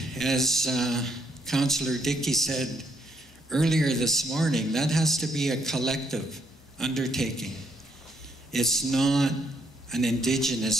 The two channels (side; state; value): both; normal; correlation 0.71